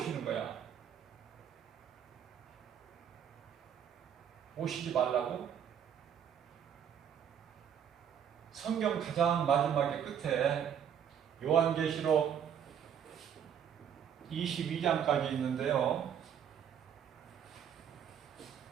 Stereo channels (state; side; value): quieter; left; 8.6 dB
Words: 거야? 오시지 말라고? 성경 가장 마지막에 끝에 요한계시록 22장까지 있는데요.